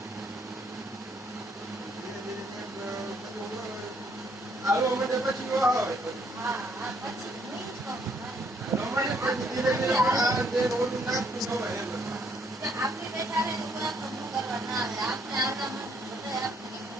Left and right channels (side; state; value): both; normal; correlation 0.68